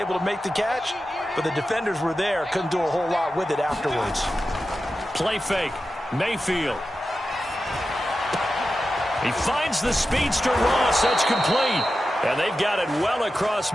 to make the catch, but the defenders were there, couldn't do a whole lot with it afterwards. Play fake, Mayfield. He finds the speedster Ross. That's complete. And they've got it well across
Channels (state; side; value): normal; both; correlation 0.92